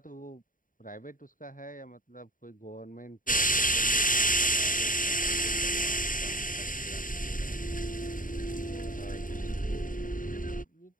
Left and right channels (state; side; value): late; right; 0.39 ms